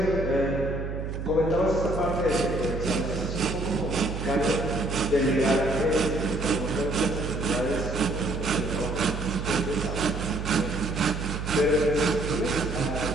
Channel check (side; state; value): right; noise; hum, 5 dB below the sound